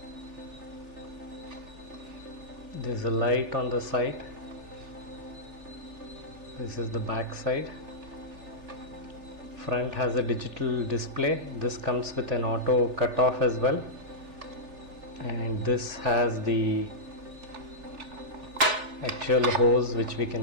There's a light on the side. This is the back side. Front has a digital display. This comes with an auto cutoff as well, and this has the actual hose which we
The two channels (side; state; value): left; late; 3.4 ms